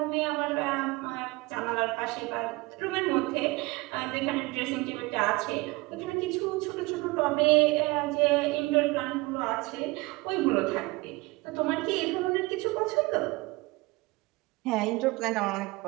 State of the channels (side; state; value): left; quieter; 23.4 dB